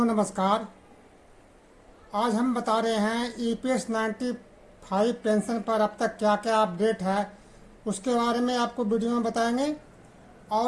नमस्कार। आज हम बता रहे हैं ईपीएस 95 पेंशन पर अब तक क्या क्या अपडेट है उसके बारे में आपको वीडियो में बताएंगे।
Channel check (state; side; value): identical; both; correlation 1.00